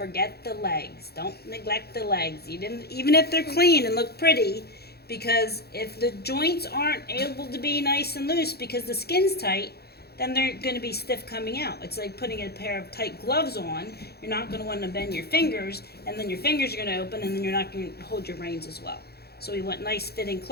the legs. Don't neglect the legs, even if they're clean and look pretty, because if the joints aren't able to be nice and loose because the skin's tight, then they're going to be stiff coming out. It's like putting a pair of tight gloves on. You're not going to want to bend your fingers, and then your fingers are going to open, and then you're not going to hold your reins as well. So we want nice fitting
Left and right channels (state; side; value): late; right; 0.46 ms